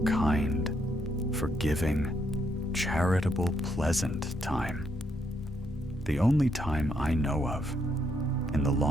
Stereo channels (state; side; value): normal; both; correlation 0.75